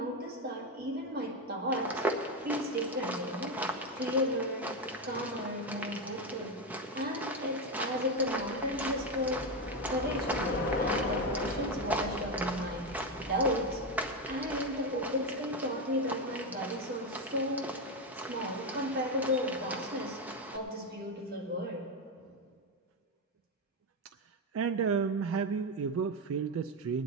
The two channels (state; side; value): normal; both; correlation 0.11